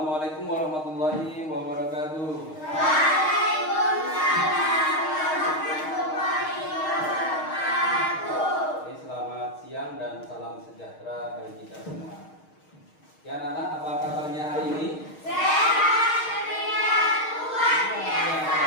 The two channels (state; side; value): late; right; 6.4 ms